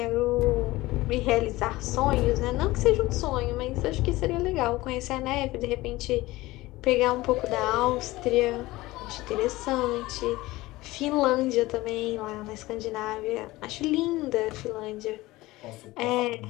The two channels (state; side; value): quieter; right; 19.1 dB